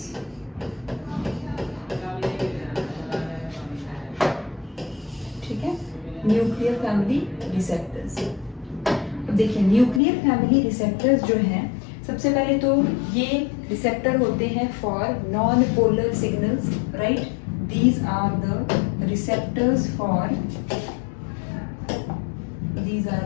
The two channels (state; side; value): drops out; right; at 10.0 s